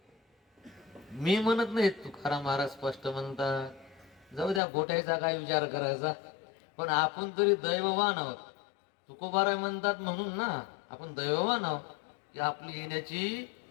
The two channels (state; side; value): drops out; right; at 4.6 s